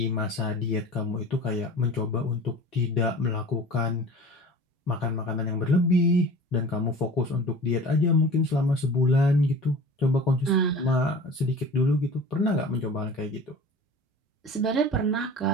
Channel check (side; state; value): both; normal; correlation 0.40